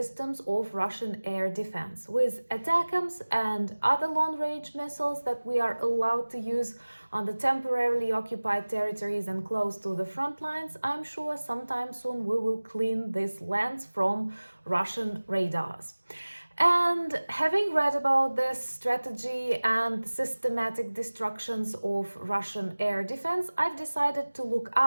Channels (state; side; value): inverted; both; correlation -1.00